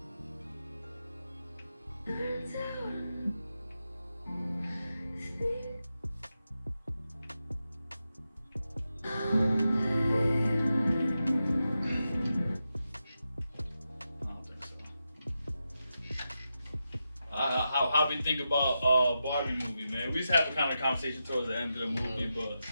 How we think about Barbie movie, man? We just have a kind of conversation towards the end of the movie, but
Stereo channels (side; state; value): both; inverted; correlation -0.89